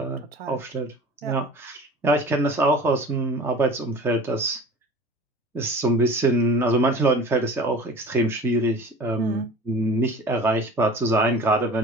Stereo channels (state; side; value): normal; both; correlation 0.40